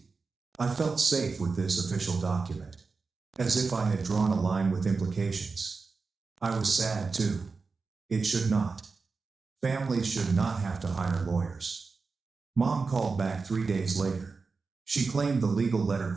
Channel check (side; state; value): left; quieter; 4.5 dB